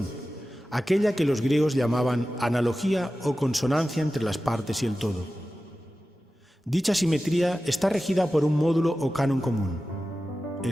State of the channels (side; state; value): both; normal; correlation 0.94